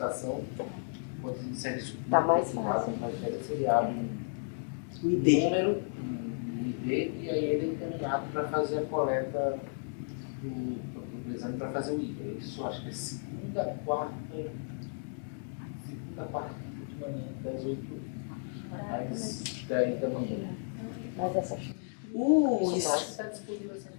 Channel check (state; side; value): silent; right; digital silence